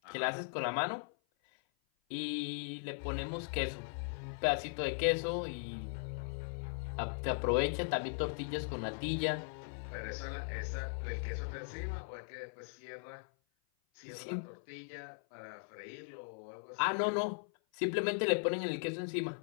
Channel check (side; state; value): right; silent; 52 dB below the other